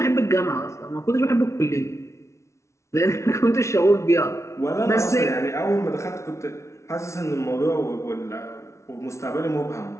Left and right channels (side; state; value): right; late; 0.13 ms